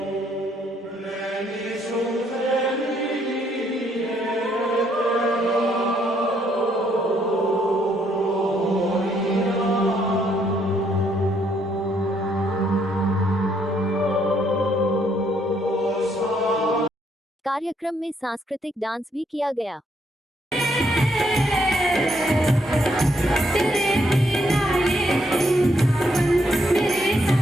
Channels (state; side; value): normal; both; correlation 0.72